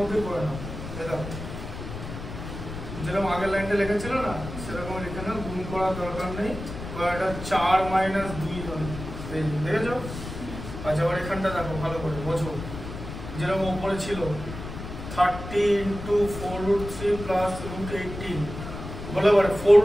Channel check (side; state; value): left; noise; rumble, 9 dB below the sound